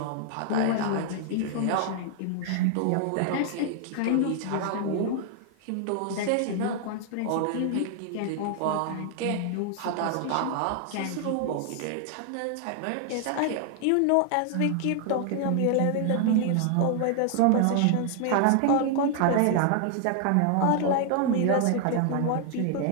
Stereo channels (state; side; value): different; both; correlation 0.00